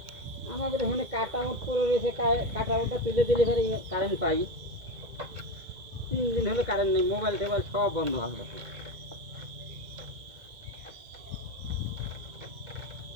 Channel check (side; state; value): left; late; 2.1 ms